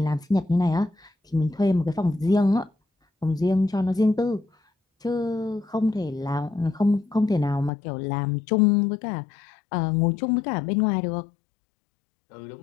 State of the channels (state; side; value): drops out; right; at 7.7 s